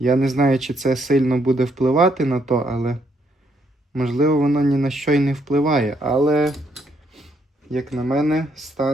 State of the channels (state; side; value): normal; both; correlation 0.73